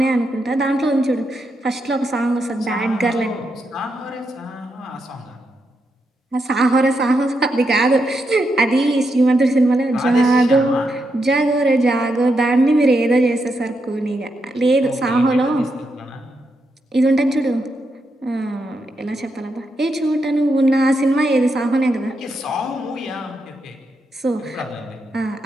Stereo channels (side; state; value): both; normal; correlation 0.82